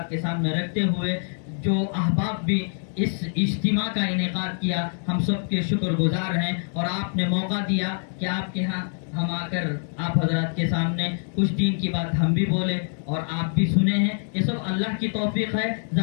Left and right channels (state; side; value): silent; right; 62 dB below the other